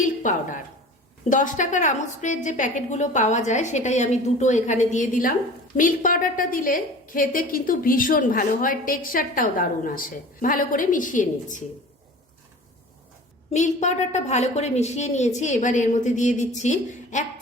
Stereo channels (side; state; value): both; normal; correlation 0.41